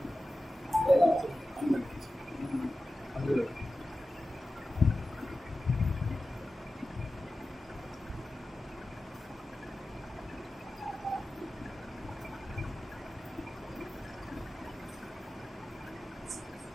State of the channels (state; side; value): normal; both; correlation 0.94